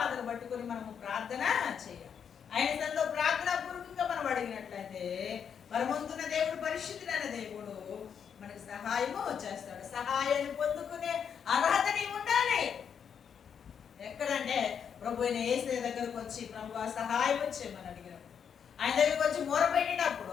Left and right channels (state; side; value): quieter; right; 7.5 dB